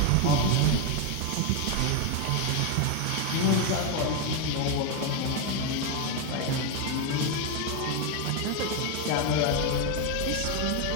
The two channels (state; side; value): different; both; correlation 0.02